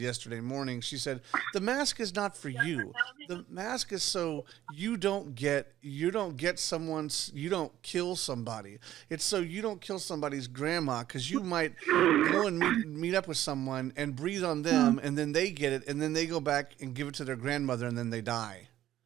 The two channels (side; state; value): left; quieter; 12.9 dB